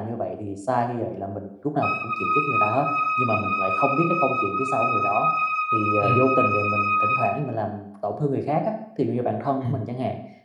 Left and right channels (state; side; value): identical; both; correlation 1.00